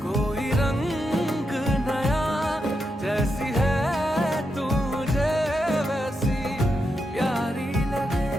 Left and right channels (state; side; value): normal; both; correlation 0.85